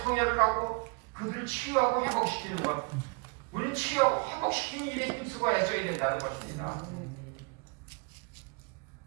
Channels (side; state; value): left; quieter; 31.6 dB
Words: 하고 그들을 치유하고 회복시키는 것, 우리는 치유하고 회복시키는 일에 힘쓰고 애써야 된다는 것입니다.